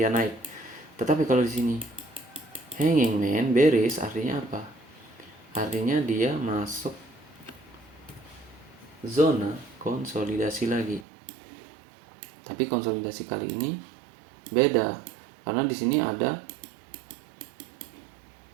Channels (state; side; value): drops out; left; at 11.1 s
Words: naik. Tetapi kalau di sini hanging man bearish, artinya apa? Artinya dia masuk zona konsolidasi lagi. Tapi konsolidasi kali ini beda, karena di sini ada